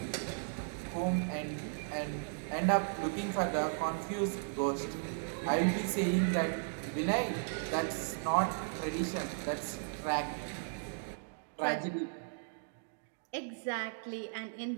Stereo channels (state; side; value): silent; left; digital silence